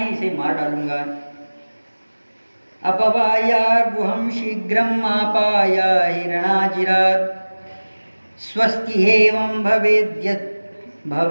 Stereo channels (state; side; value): inverted; both; correlation -1.00